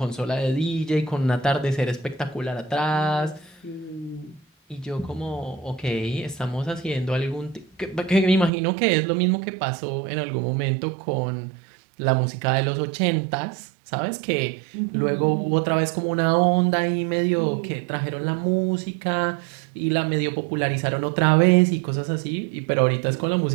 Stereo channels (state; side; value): drops out; left; at 8.5 s